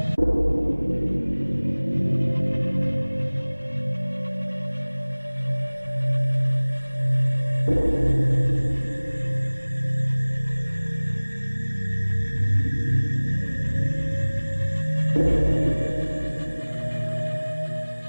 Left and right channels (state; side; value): inverted; both; correlation -1.00